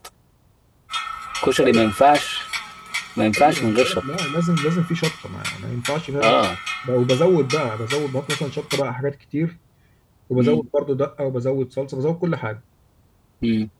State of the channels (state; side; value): identical; both; correlation 1.00